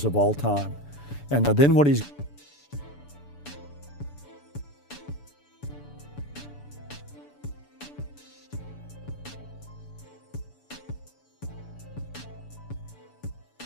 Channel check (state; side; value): late; right; 6.9 ms